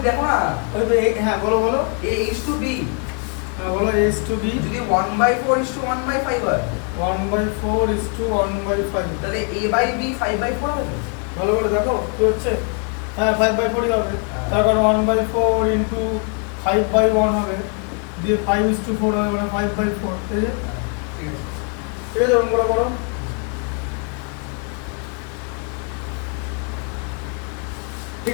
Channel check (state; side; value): quieter; right; 38.7 dB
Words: দেখো না ওই তো হ্যাঁ বলো a is to b হ্যাঁ বলো a is to b যদি 1/4 is to 1/5 হয় 1/4 is to 1/5 তাহলে a by b 5/4 হবে ভালো করে দেখো কি হচ্ছে হ্যাঁ 5/4 ই হবে তারপর 1/4 into 5/1 হবে দিয়ে 5:4 হবে মানে 5/4 ঠিক আছে ঠিক আছে ঠিক আছে ওরকম করে করো ঠিক